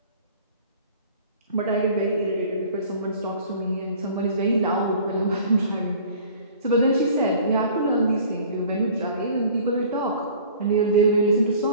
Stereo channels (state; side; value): inverted; both; correlation -0.48